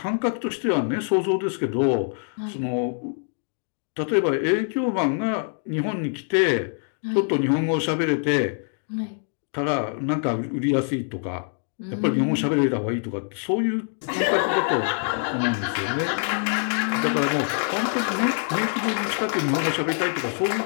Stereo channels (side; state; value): right; silent; 56 dB below the other